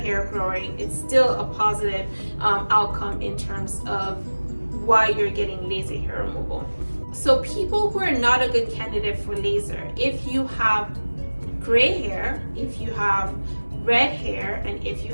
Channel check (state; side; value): inverted; both; correlation -1.00